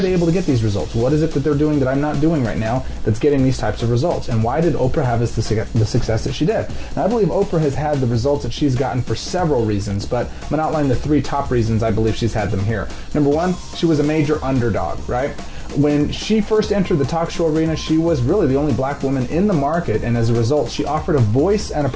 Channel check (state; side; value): identical; both; correlation 1.00